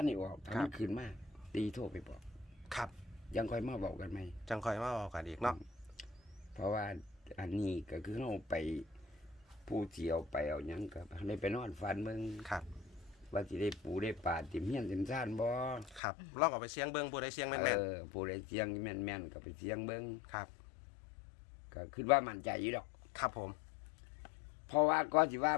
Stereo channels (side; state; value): right; drops out; at 16.0 s